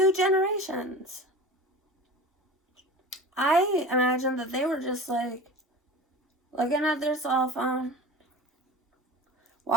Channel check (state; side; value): normal; both; correlation 0.35